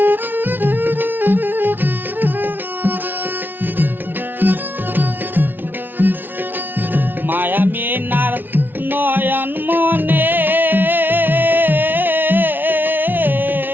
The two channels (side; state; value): left; late; 0.093 ms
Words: মায়া মিনার নয়ন মনে